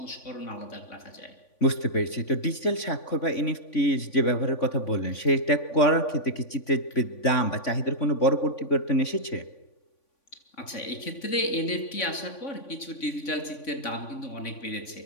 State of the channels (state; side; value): late; right; 3.5 ms